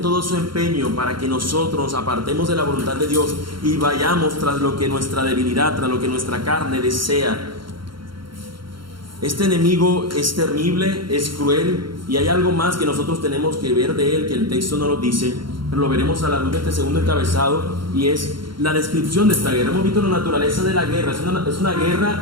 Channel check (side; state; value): left; late; 0.73 ms